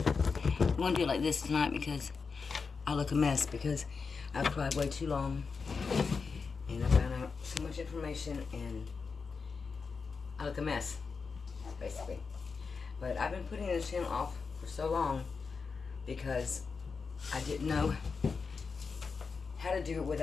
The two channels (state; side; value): quieter; right; 5.0 dB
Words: I'm gonna do it like this tonight because I look a mess because I've cried way too long and I found out so much information and I look a mess, basically. But I've been putting this channel off for so long because I didn't know how to do it